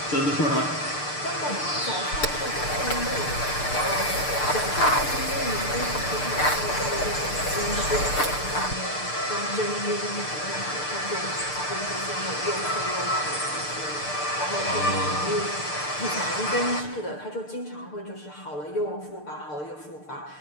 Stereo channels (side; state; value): right; late; 6.7 ms